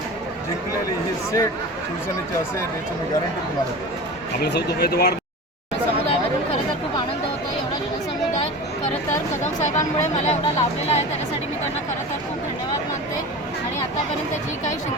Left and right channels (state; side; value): normal; both; correlation 0.32